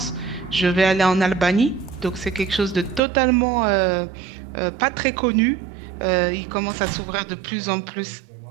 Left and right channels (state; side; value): drops out; left; at 3.0 s